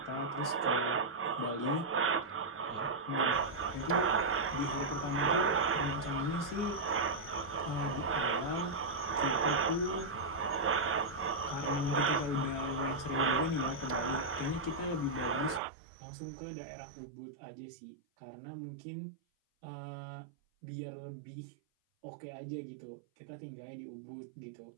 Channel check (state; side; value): drops out; left; at 15.6 s